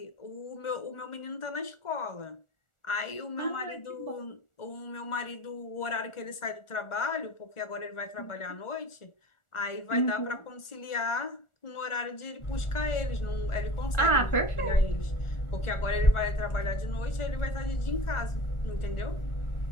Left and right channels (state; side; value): late; right; 1.4 ms